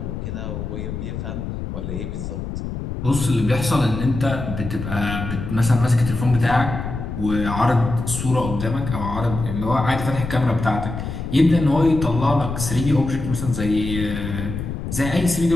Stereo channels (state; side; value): noise; left; rumble, 6 dB below the sound